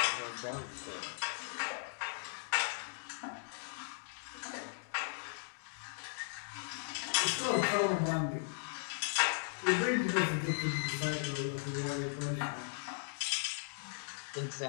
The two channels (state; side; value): silent; right; digital silence